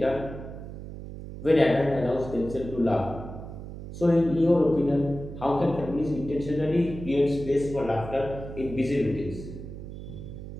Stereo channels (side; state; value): right; noise; hum, 11 dB below the sound